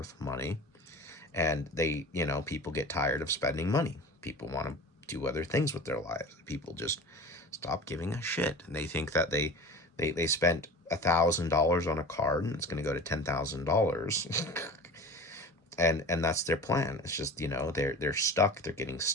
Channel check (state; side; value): normal; both; correlation 0.36